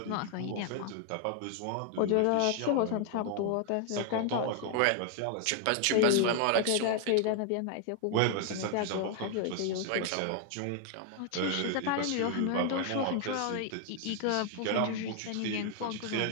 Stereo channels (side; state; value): both; different; correlation 0.00